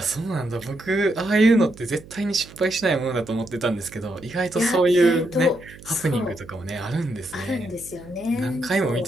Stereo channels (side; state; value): right; noise; hum, 19 dB below the sound